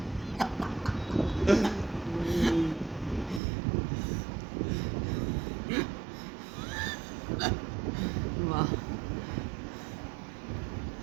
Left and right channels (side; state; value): left; drops out; at 3.4 s